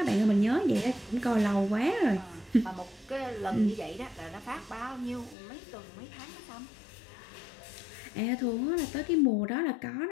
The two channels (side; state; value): right; drops out; at 5.4 s